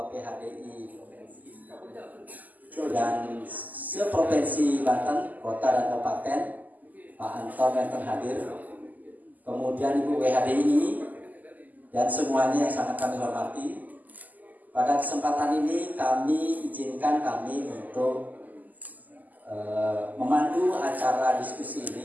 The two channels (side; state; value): left; late; 0.081 ms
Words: PHDI dan seprovinsi Banten, kota dan kabupaten, Pak Anton yang hadir, kemudian Ibu WHDI dan semuanya yang sangat kami hormati. Pada kesempatan ini kami izinkan kami untuk memandu acara diskusi